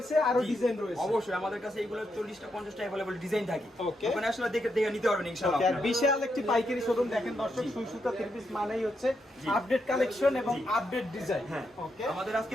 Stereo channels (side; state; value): both; normal; correlation 0.81